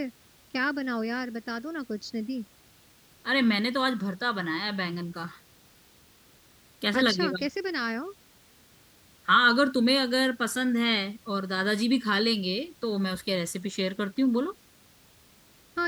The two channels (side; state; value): both; identical; correlation 1.00